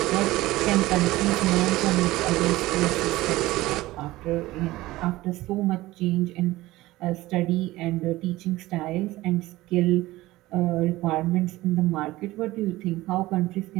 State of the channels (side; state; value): left; quieter; 18.0 dB